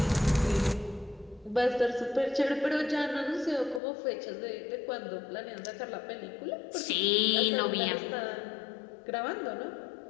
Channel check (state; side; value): drops out; right; at 3.8 s